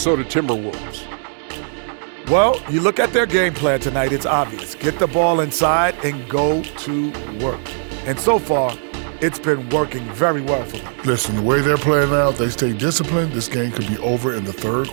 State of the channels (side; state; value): left; silent; digital silence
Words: Timberwolves. Well, you look at their game plan tonight, it's obvious. Get the ball inside and go to work. And so far, it's been working very well for them. Listen, the way they're playing now, if they stay disciplined, this game could be over in the third